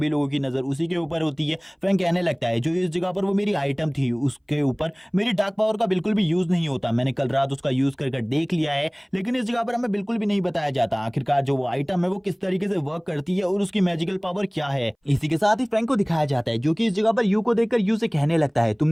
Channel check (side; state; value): both; identical; correlation 1.00